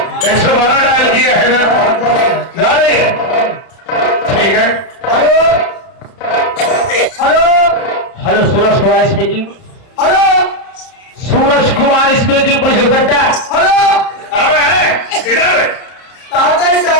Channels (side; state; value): right; late; 31 ms